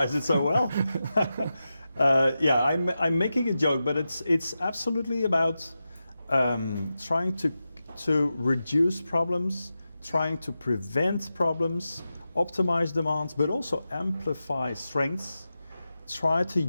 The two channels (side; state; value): both; inverted; correlation -0.91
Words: it so well. Yeah, I'm making a joke, but it's absolutely about trying to reduce problems, trying to prevent problems, optimize demands, but also amplify strengths. Try to